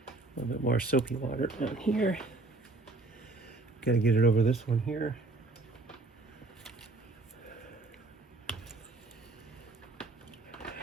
little bit more soapy water on here. Got to get it over this one here.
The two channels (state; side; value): quieter; left; 3.2 dB